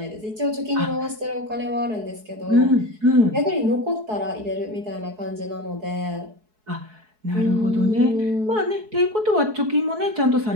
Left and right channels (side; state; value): left; late; 4.7 ms